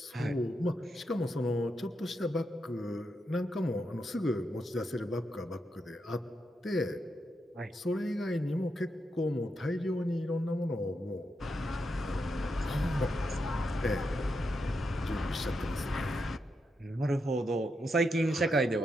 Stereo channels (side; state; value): both; normal; correlation 0.84